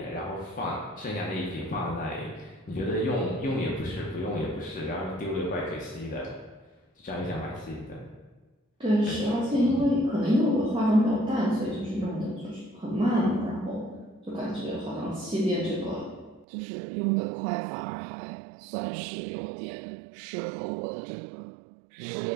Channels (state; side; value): drops out; left; at 16.4 s